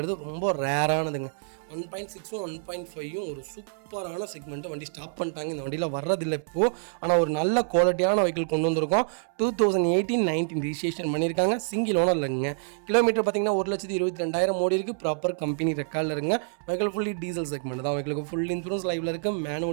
ரொம்ப ரேரானதுங்க. 1.6ம் 1.5ம் ஒரு சூப்பரான செக்மெண்ட்டு. வண்டி ஸ்டாப் பண்ணிட்டாங்க, இந்த வண்டியில் வர்றதில்லை இப்போது. ஆனால் ஒரு நல்ல குவாலிட்டியான வெஹிக்கிள் கொண்டு வந்திருக்கோம். 2018-19 ரிஜிஸ்ட்ரேஷன் பண்ணியிருக்காங்க. சிங்கிள் ஓனர் இல்லைங்க. கிலோமீட்டர் பார்த்தீங்கன்னா 1,22,000 ஓடி இருக்குது. ப்ராப்பர் கம்பெனி ரெக்கார்டில் இருக்குங்க. வெஹிக்கிள் ஃபுல்லி டீசல் செக்மெண்ட் தான். வெஹிக்கிளுக்கு ஃபுல் இன்சூரன்ஸ் லைவில் இருக்குது.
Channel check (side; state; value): left; silent; 60 dB below the other